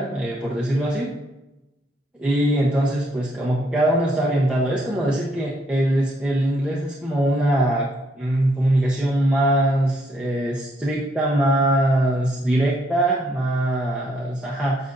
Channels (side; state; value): both; normal; correlation 0.71